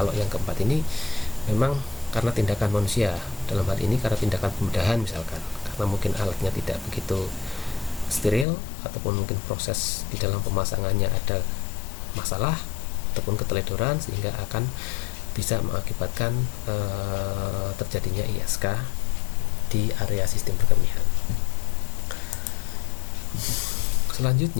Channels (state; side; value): drops out; right; at 8.5 s